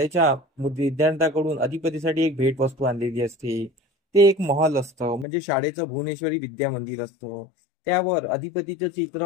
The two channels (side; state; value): right; drops out; at 5.2 s